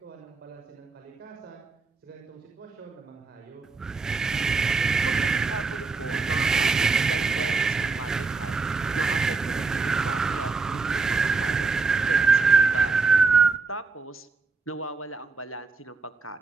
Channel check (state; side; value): quieter; left; 4.3 dB